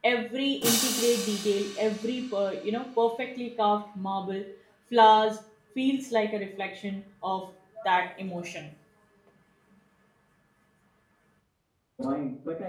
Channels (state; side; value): identical; both; correlation 1.00